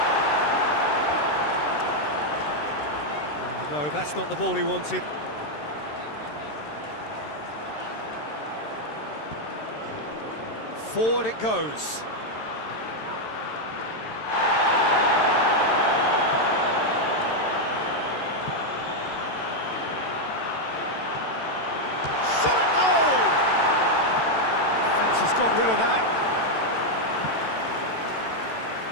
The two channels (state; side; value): late; right; 13 ms